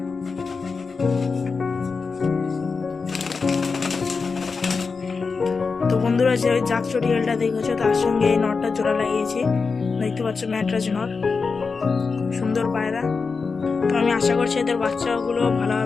তো বন্ধুরা যে ওই জাক চটিয়ালটা দেখেছো, তার সঙ্গে এই নটটা জোড়া লাগিয়েছি, দেখতে পাচ্ছ ম্যাড্রাস নট, সুন্দর পায়রা। তো আমি আশা করছি এদের বাচ্চাগুলো ভালো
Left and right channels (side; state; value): right; quieter; 4.8 dB